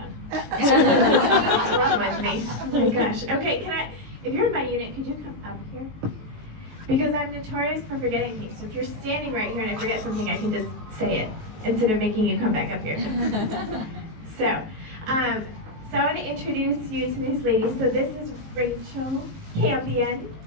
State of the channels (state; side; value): late; left; 19 ms